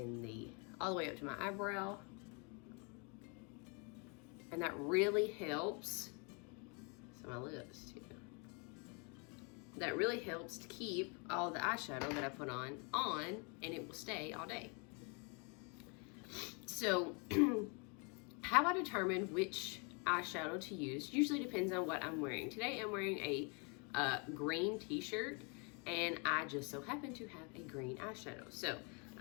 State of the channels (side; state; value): right; quieter; 34.5 dB